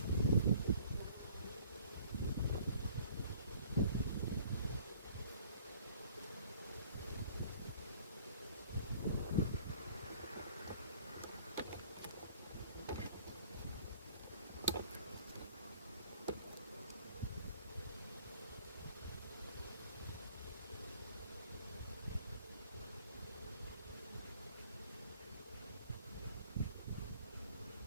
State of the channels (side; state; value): both; inverted; correlation -0.54